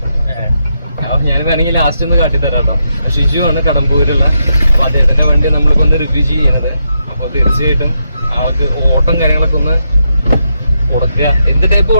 ഞാൻ വേണമെങ്കിൽ ലാസ്റ്റ് ഒന്ന് കാട്ടിത്തരാം കേട്ടോ. ഷിജു ആണ് കടമ്പൂരുള്ള. അപ്പോൾ അദ്ദേഹത്തിൻ്റെ വണ്ടി നമ്മളിപ്പോൾ ഒന്ന് റിവ്യൂ ചെയ്യണത്. അപ്പോൾ തീർച്ചയായിട്ടും ആൾക്ക് ഓട്ടം കാര്യങ്ങളൊക്കെ ഒന്ന് കൊടുക്കുക. എന്ത് ടൈപ്പ്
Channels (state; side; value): inverted; both; correlation -0.82